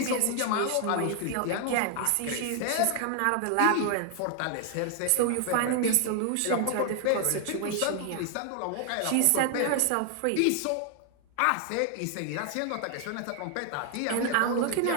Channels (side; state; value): both; different; correlation 0.00